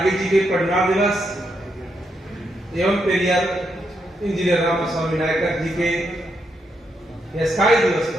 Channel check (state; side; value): normal; both; correlation 0.81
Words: जी के परिनिर्वाण दिवस एवं पेरियार इंजीनियर रामास्वामी नायकर जी के स्काई दिवस